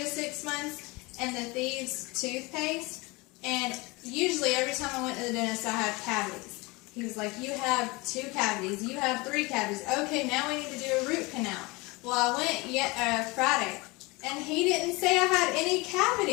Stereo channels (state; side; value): quieter; right; 24.6 dB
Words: 6 months, and the Thieves toothpaste. And usually every time I went to the dentist, I had cavities. He was like, you have 2 cavities, you have 3 cavities. Okay, now we need to do a root canal. Well, I went Friday, and he didn't say I had any